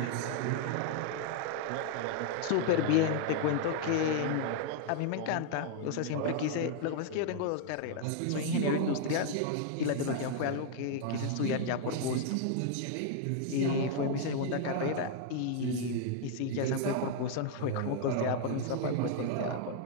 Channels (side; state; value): both; different; correlation 0.00